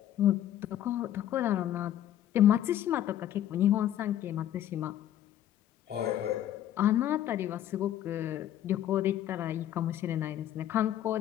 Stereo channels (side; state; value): right; quieter; 11.7 dB